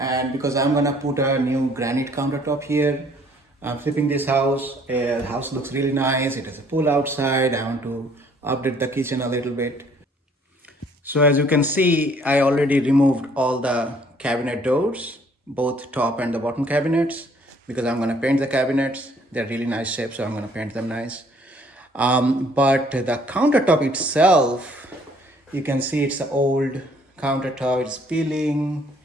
because I'm gonna put a new granite countertop here. I'm flipping this house. The house looks really nice. It has a pool outside. I want to update the kitchen a little bit. So as you can see, I already removed all the cabinet doors, both top and the bottom cabinets, because I'm gonna paint the cabinets. They're really nice shape, so I'm gonna paint them nice. But the countertop itself, you can see it's an old countertop. It's peeling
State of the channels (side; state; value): both; normal; correlation 0.61